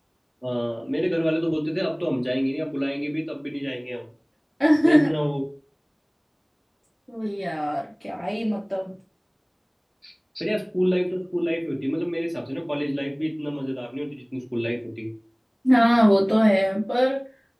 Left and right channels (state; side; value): identical; both; correlation 1.00